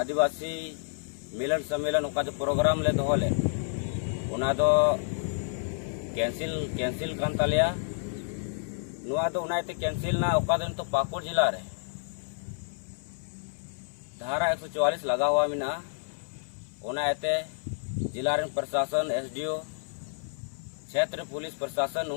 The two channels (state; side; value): silent; right; 58 dB below the other